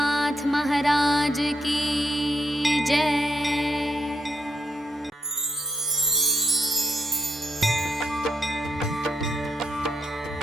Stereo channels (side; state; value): both; normal; correlation 0.77